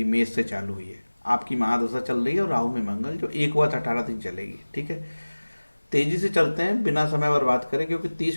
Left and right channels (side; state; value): both; inverted; correlation -1.00